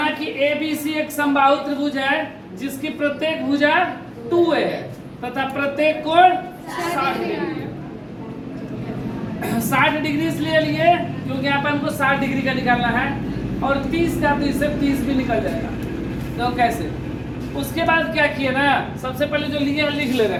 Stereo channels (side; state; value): both; identical; correlation 1.00